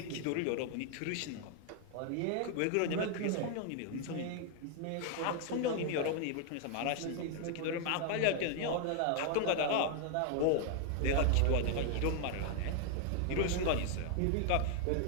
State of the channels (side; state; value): both; different; correlation 0.00